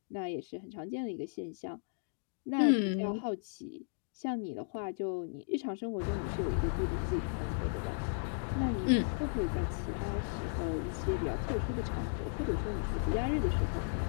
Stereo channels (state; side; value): silent; right; digital silence